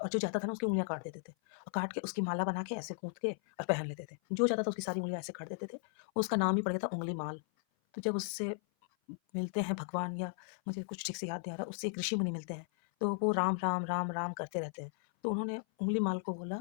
जो जाता था ना उसकी उँगलियाँ काट देते थे और काट के उसकी माला बना के ऐसे गूँथ के और पहन लेते थे। जो जाता था उसकी सारी उँगलियाँ ऐसे काट देते थे। उसका नाम ही पड़ गया था उँगलीमाल। तो जब उससे मिलते हैं भगवान या मुझे कुछ ठीक से याद नहीं आ रहा, उससे एक ऋषि मुनि मिलते हैं, तो वो राम, राम, राम, राम करते रहते हैं। तो उन्होंने उँगलीमाल को बोला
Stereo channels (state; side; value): silent; right; 54 dB below the other